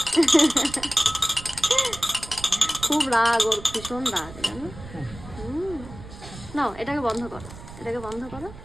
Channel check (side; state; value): right; noise; rumble, 15 dB below the sound